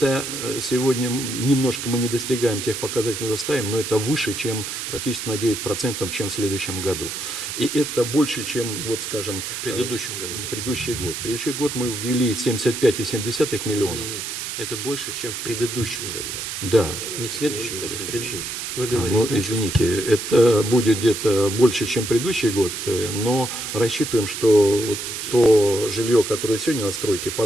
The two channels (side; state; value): right; noise; hiss, 5 dB below the sound